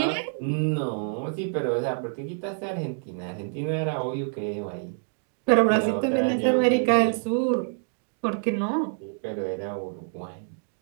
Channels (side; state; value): left; silent; 60 dB below the other